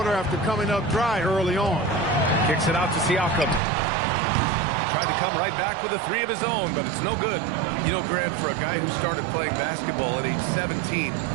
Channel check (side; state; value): left; drops out; at 3.6 s